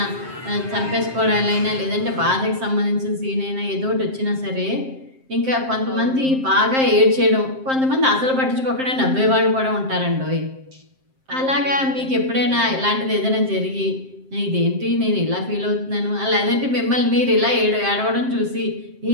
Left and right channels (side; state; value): left; late; 7.6 ms